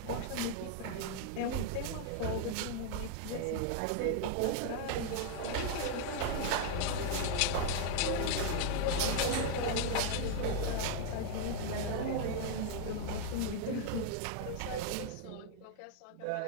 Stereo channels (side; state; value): both; different; correlation 0.00